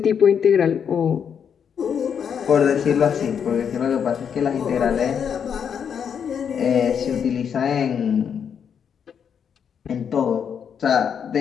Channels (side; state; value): right; quieter; 7.6 dB